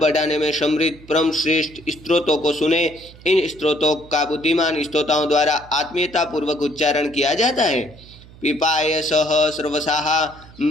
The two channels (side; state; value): right; noise; hum, 21 dB below the sound